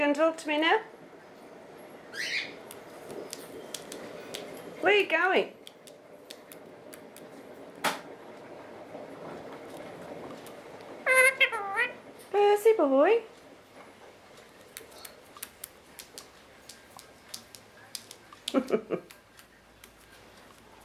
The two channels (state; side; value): identical; both; correlation 1.00